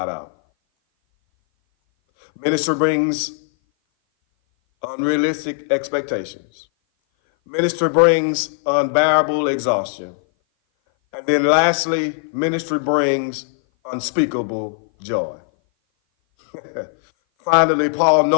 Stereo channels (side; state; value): right; silent; 58 dB below the other